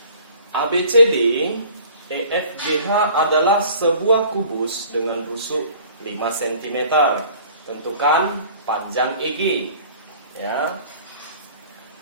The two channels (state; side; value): inverted; both; correlation -0.49